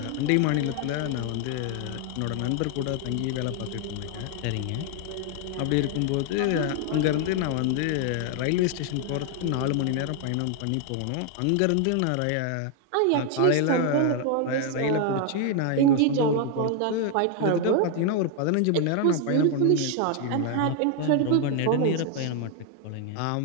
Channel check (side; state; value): both; different; correlation 0.00